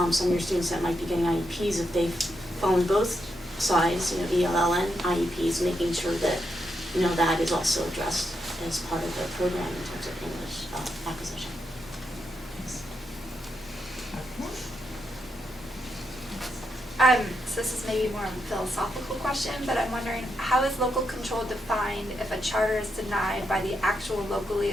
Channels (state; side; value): normal; both; correlation 0.83